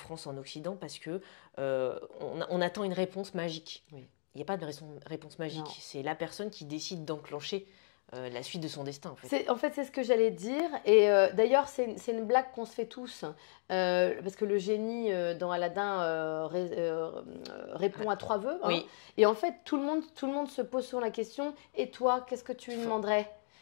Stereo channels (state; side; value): silent; right; digital silence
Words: en Occident, parce que on attend une réponse magique. » Il n'y a pas de réponse magique. C'est la personne qui décide d'enclencher la suite de son destin, en fait. En fait, c'est ce que j'allais dire. Et d'ailleurs, c'est une blague qu'on se fait tous. Parce que le génie dans Aladdin répond à 3 vœux. Hein. Oui. Et en fait, tout le monde se pose sur la question, et toi, qu'est-ce que tu lui demanderais?